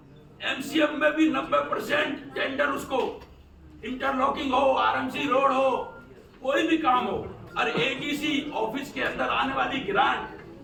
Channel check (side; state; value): both; identical; correlation 1.00